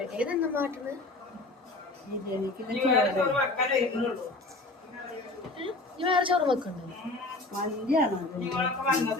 തന്നെ മാറ്റുന്നത്. ബിരിയാണിക്ക് വേറെ ചോറ് വെക്കണ്ടോ?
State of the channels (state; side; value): quieter; right; 3.0 dB